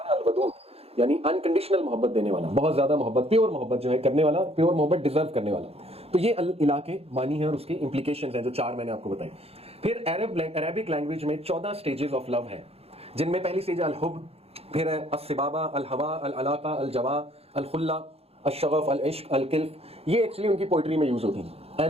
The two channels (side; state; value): left; late; 0.29 ms